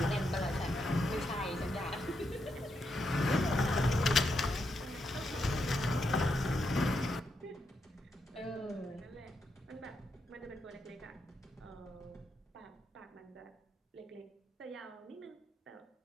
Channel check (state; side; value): normal; both; correlation 0.82